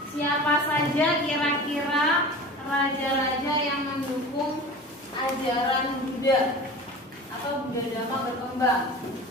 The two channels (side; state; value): both; normal; correlation 0.36